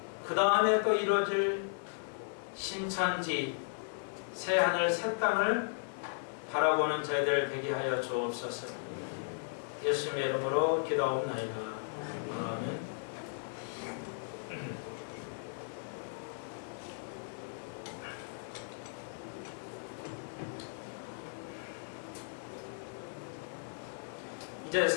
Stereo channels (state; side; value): silent; right; 54 dB below the other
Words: 그 다음에 또 이루어질 신천지, 새하늘 새 땅을 바라보는 저희들 되게 하여 주옵소서. 예수님의 이름으로 기도하옵나이다. 아멘. 이제